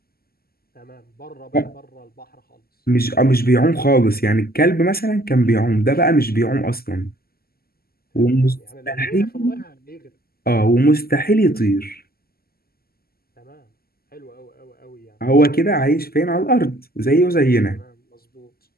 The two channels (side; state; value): right; late; 0.45 ms